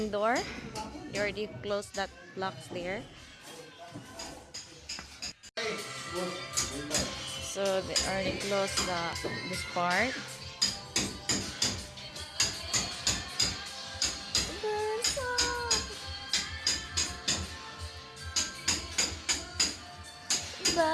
door. They already closed that blocks there. So they already closed this part.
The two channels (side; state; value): both; identical; correlation 1.00